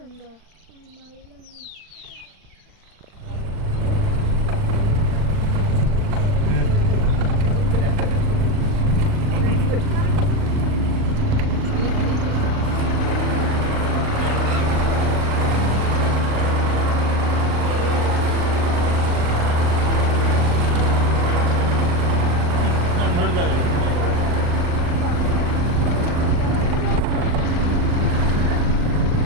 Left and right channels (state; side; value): late; left; 39 ms